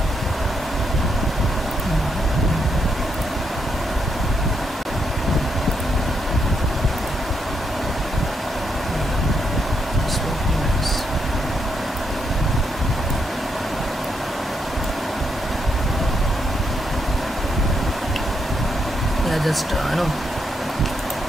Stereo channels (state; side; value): normal; both; correlation 0.79